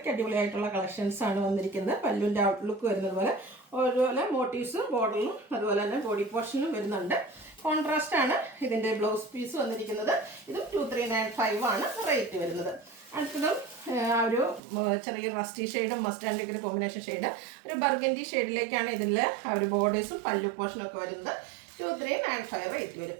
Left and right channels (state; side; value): drops out; left; at 14.6 s